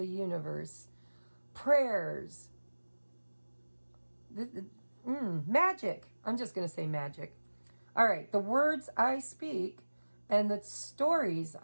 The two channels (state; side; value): inverted; both; correlation -1.00